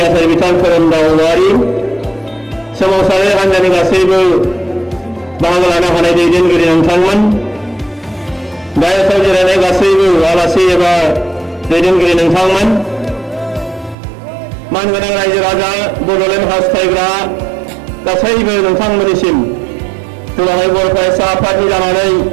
आफादगिरि बिथां खोरोमदाव औवारि सोमावसारारि हान्जानि गासैबो बाहागो लानो हानाय दैदेनगिरि नोंथांमोन गाहायाव जिरायनाय गासैबो आलासि एबा दैदेनगिरि नोंथांमोन मानगोनां रायजो राजा बड'लेण्ड हास्थायग्रा गासैबो नोंथांमोननिसिम दुलाराय बर' फरायसा आफादनि जानानै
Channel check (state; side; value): drops out; left; at 14.0 s